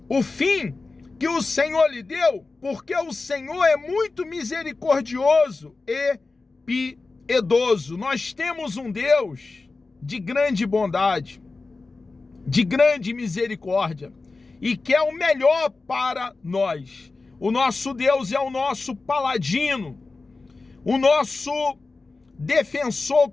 o fim que o Senhor lhe deu, porque o Senhor é muito misericordioso e piedoso. Nós temos um Deus de grande bondade, de grande misericórdia, e quer o melhor para nós. O nosso Deus é o nosso paladino, o nosso defensor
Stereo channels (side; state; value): right; quieter; 3.7 dB